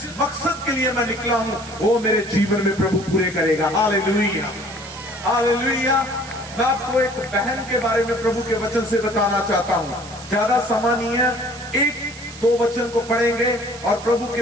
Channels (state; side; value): noise; right; hiss, 16 dB below the sound